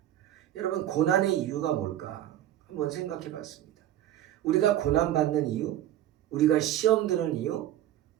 여러분, 고난의 이유가 뭘까? 한번 생각해 봤습니다. 우리가 고난받는 이유, 우리가 시험 드는 이유,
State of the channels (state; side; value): quieter; left; 12.4 dB